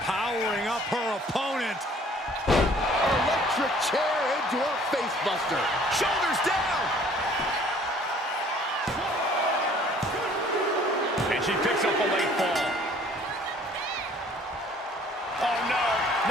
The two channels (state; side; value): normal; both; correlation 0.55